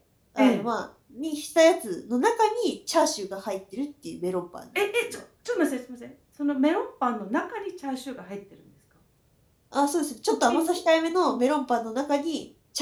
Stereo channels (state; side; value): identical; both; correlation 1.00